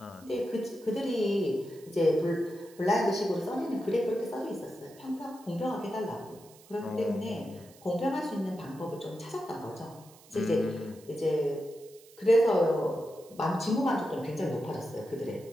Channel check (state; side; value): noise; right; hiss, 24 dB below the sound